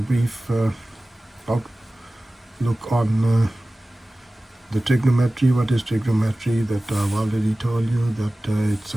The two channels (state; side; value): normal; both; correlation 0.97